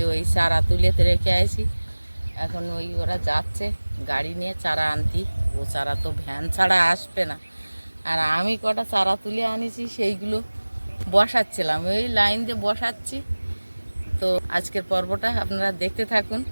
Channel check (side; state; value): both; inverted; correlation -1.00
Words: ওই চারা তুলেতে রেখে আসি, এখন ওরা যাচ্ছে গাড়ি নিয়ে চারা আনতি। ও চারা তো ভ্যান ছাড়া আসবে না, আর আমি কটা চারা তুলে আনিছি, সেইগুলো বসাচ্ছিলাম, ওই লাইন দিয়ে বসাচ্ছি। তো আজকের পর্বটা আপনারা দেখতে থাকুন,